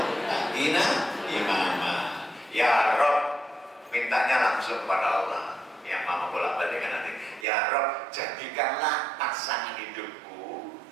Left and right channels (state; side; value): drops out; left; at 7.5 s